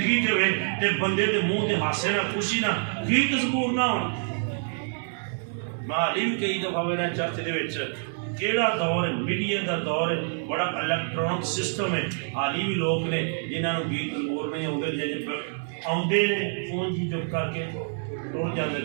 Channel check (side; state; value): left; silent; digital silence